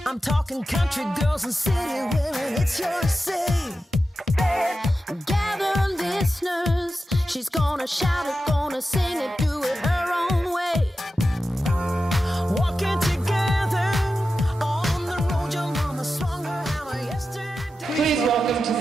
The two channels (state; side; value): normal; both; correlation 0.91